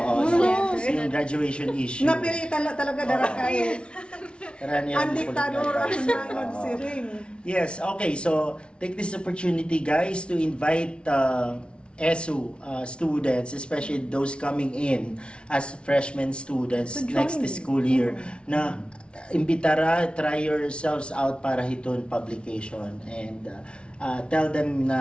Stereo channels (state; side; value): late; right; 0.058 ms